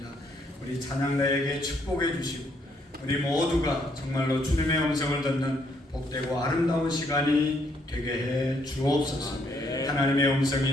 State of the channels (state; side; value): normal; both; correlation 0.71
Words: 우리 찬양가에게 축복해 주시고 우리 모두가 정말로 주님의 음성을 듣는 복되고 아름다운 시간이 되게 해 주옵소서. 하나님의